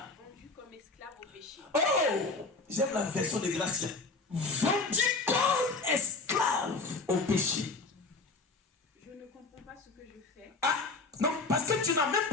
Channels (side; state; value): right; quieter; 3.7 dB